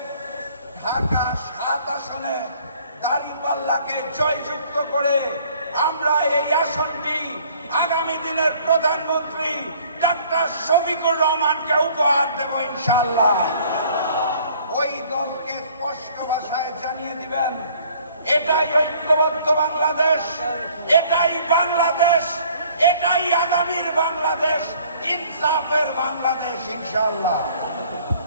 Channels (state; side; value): inverted; both; correlation -0.57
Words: ঢাকা 7 আসনে দাঁড়িপাল্লাকে জয়যুক্ত করে আমরা এই আসনটি আগামী দিনের প্রধানমন্ত্রী ডক্টর শফিকুর রহমানকে উপহার দেব ইনশাআল্লাহ। ওই দলকে স্পষ্ট ভাষায় জানিয়ে দিবেন, এটাই ঐক্যবদ্ধ বাংলাদেশ, এটাই বাংলাদেশ, এটাই আগামীর বাংলাদেশ, ইনসাফের বাংলাদেশ ইনশাআল্লাহ।